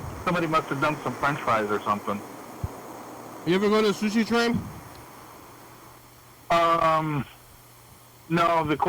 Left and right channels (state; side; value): identical; both; correlation 1.00